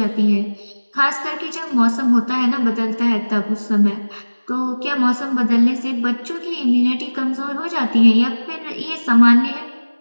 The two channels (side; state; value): both; inverted; correlation -1.00